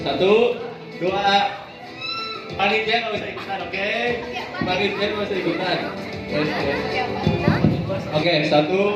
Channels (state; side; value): identical; both; correlation 1.00